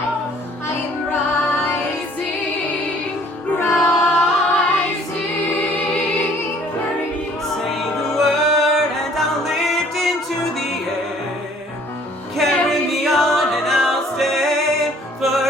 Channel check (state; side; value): normal; both; correlation 0.57